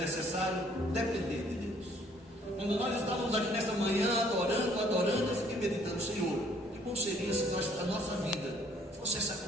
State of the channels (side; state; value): both; normal; correlation 0.61